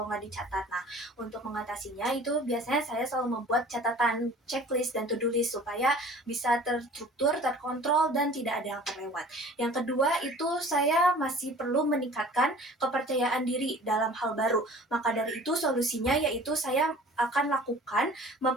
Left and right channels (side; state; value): both; normal; correlation 0.47